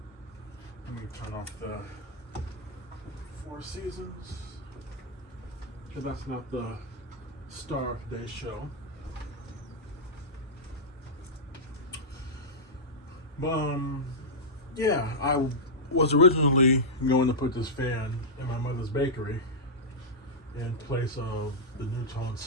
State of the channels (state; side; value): normal; both; correlation -0.09